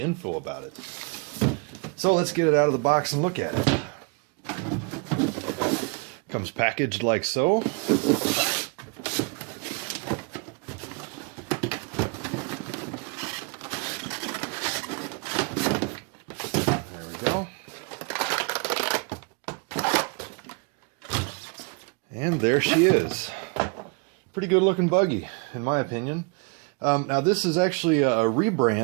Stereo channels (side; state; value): left; quieter; 32.7 dB